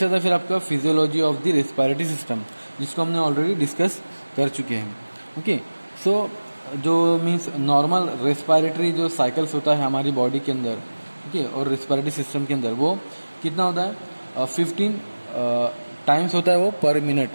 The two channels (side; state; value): both; inverted; correlation -1.00